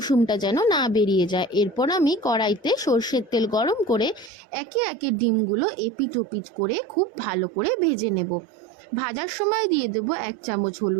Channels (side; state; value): left; drops out; at 4.3 s